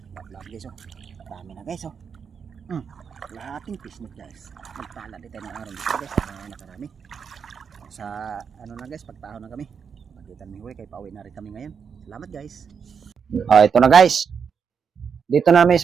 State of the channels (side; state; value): left; quieter; 6.5 dB